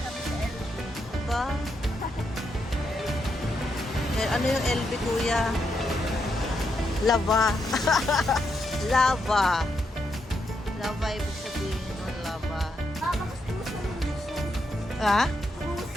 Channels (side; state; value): both; normal; correlation 0.81